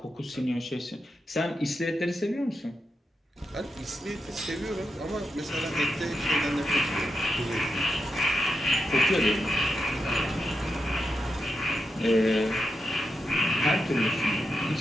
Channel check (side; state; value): both; normal; correlation 0.86